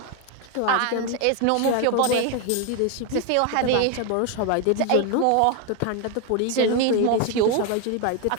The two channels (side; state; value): both; different; correlation 0.01